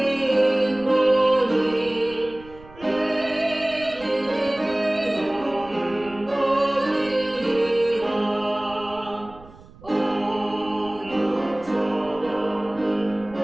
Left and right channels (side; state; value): right; noise; rumble, 21 dB below the sound